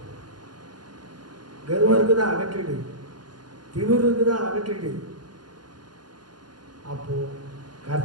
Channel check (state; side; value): late; left; 0.70 ms